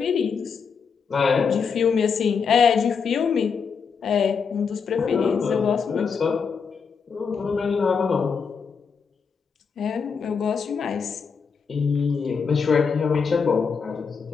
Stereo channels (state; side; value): quieter; right; 5.9 dB